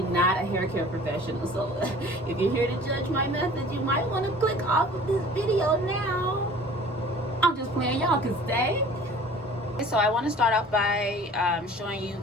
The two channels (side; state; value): both; normal; correlation 0.47